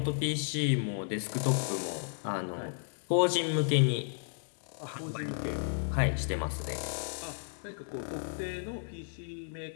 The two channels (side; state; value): right; silent; digital silence